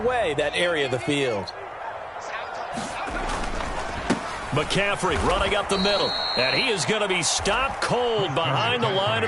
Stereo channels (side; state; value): both; identical; correlation 1.00